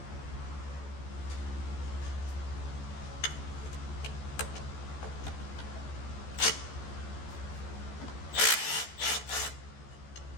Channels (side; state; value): right; late; 14 ms